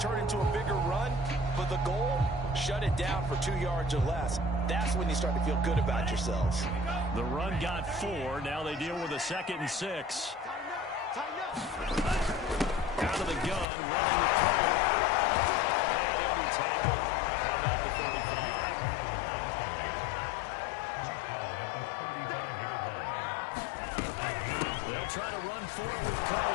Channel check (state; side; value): drops out; right; at 13.7 s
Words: into a bigger run, but the goal, shut it down for 2 yards or less. That's when you start to feel good about yourselves. The run got 4. Now they deal with a 2nd and 6. Out of the gun, running with Cohen. And he'll be tackled at about the 35. They'll try to run for it with